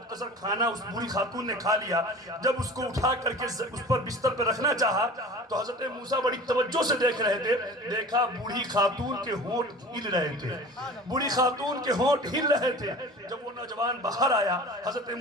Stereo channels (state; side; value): normal; both; correlation 0.39